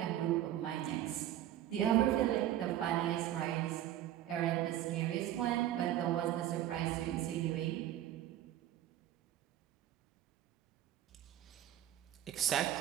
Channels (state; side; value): quieter; left; 12.4 dB